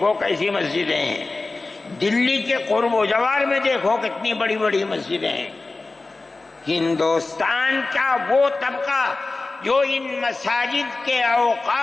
کیسی مسجدیں ہیں، دلی کے قرب و جوار میں دیکھو کتنی بڑی بڑی مسجدیں ہیں۔ ہندوستان کا وہ طبقہ جو ان مساجد کے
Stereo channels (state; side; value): quieter; right; 3.4 dB